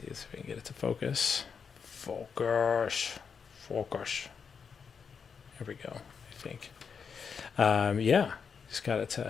if we can get it to focus. Focus. There we go, I think. Yeah, just got it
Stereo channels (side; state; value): right; quieter; 6.2 dB